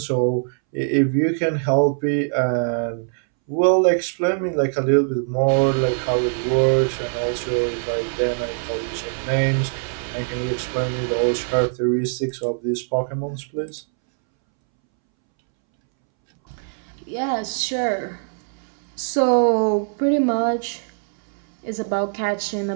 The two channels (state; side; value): silent; left; 64 dB below the other